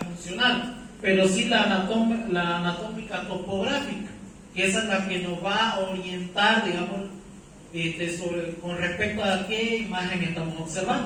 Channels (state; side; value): identical; both; correlation 1.00